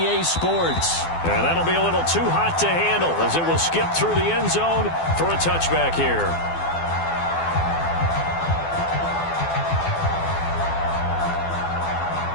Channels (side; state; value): right; late; 12 ms